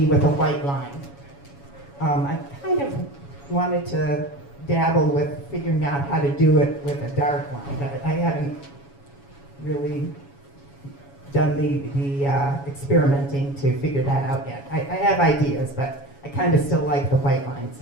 with a white line. I kind of wanted to dabble with figuring out how to do it with a dark line, but I haven't really done the experimenting to figure that out yet. I have ideas, but I kind of still like the white lines.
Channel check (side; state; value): right; late; 7.2 ms